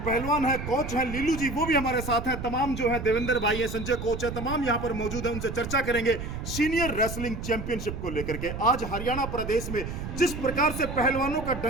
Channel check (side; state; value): right; noise; rumble, 7 dB below the sound